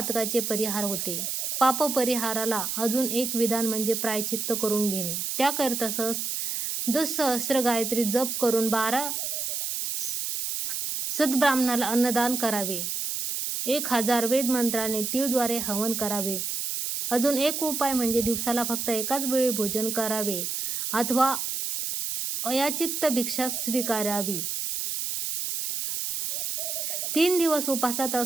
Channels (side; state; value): right; noise; hiss, 2 dB below the sound